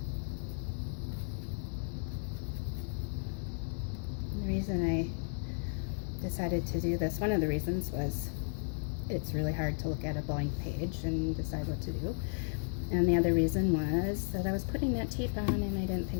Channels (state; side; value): silent; right; digital silence